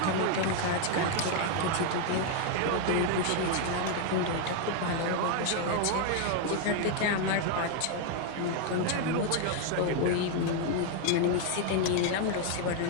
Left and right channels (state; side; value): different; both; correlation 0.00